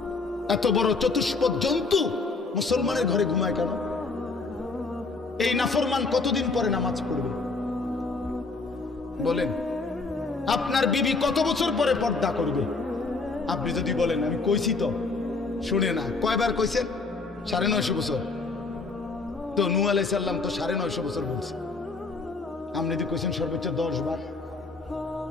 এত বড় চতুষ্পদ জন্তু মুসলমানের ঘরে ঘুমায় কেন? এই নাফরমান কতদিন পরে নামাজ পড়বে বলেন? আপনার বিবি কত বছর পরে পর্দা করবে? আপনি যদি বলেন আমি কইছি তো, শুনে না। কয়বার কইছেন? 950 বছর। তো নূহ আলাইহিস সালাম তো 950 বছর বলছে। আপনি যদি কইছেন সর্বোচ্চ 10 বার,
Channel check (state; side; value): quieter; right; 3.9 dB